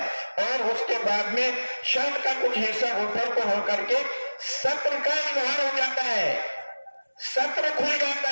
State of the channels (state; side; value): inverted; both; correlation -1.00